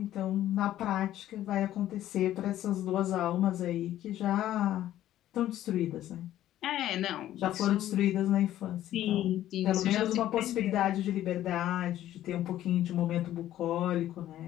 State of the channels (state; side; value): quieter; right; 12.9 dB